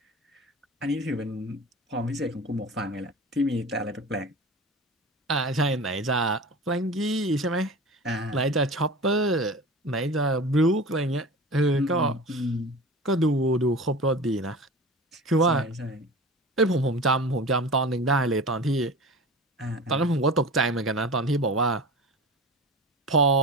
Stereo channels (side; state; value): both; normal; correlation 0.34